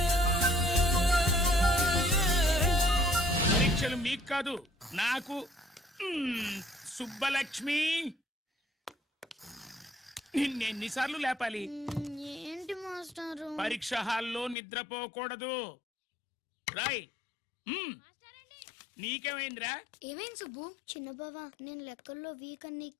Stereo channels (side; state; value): right; drops out; at 14.6 s